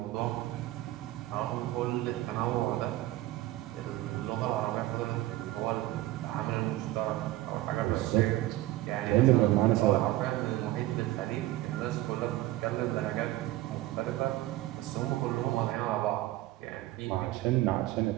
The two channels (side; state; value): left; quieter; 16.2 dB